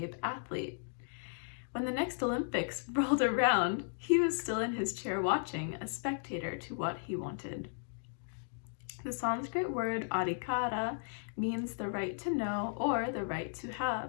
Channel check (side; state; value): right; silent; digital silence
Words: athlete. When the next Olympics rolled around, he was still in his chair watching, a spectator to what he wanted. The Sanskrit word adhikara means the right to know or the right to have.